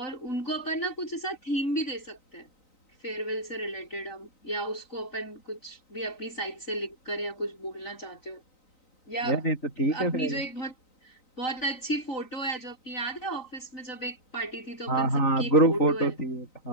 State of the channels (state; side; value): late; right; 3.9 ms